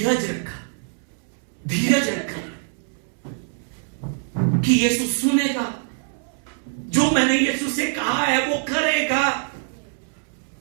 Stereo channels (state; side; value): silent; left; 63 dB below the other